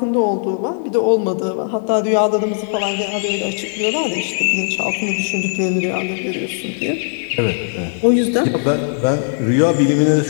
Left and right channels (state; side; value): silent; right; 67 dB below the other